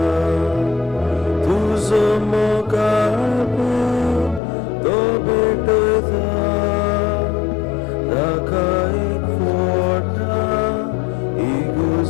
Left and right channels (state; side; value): drops out; right; at 4.4 s